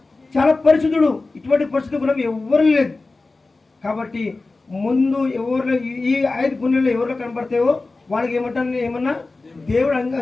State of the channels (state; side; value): quieter; right; 3.5 dB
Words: చాలా పరిశుద్ధుడు. ఇటువంటి పరిశుద్ధ గుణం ఎవరు లేదు. కాబట్టి ముందు ఎవరు ఈ 5 గుణాలు ఎవరిలో కనబడతాయో వాళ్ళకి ఏమన్నా దేవుడు